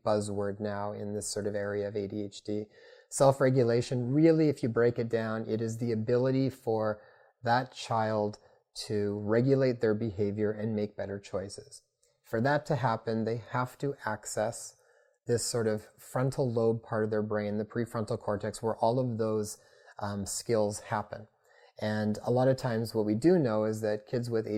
buzzword now in this sort of area of ADHD. Self-regulation, really, if you break it down, it is the ability for that child to regulate their behavior and make better choices. For that to happen, they have to access this sort of frontal lobe part of their brain, the prefrontal cortex, where all of those skills happen. And a lot of times what we do know is that kids with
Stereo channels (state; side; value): identical; both; correlation 1.00